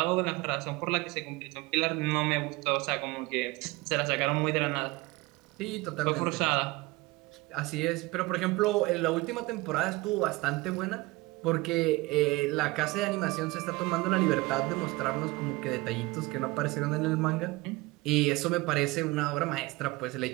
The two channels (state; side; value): quieter; left; 22.1 dB